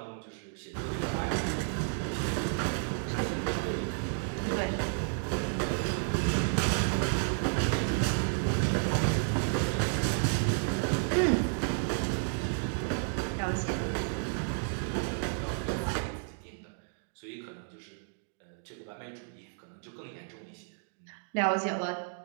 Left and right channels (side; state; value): left; silent; 56 dB below the other